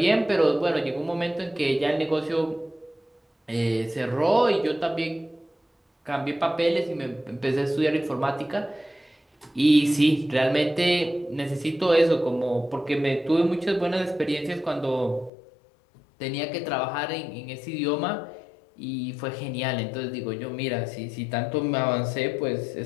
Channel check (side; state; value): right; drops out; at 15.3 s